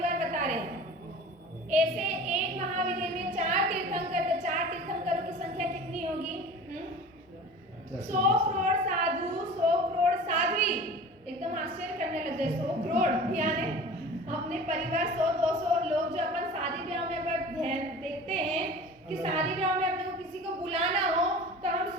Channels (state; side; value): normal; both; correlation 0.39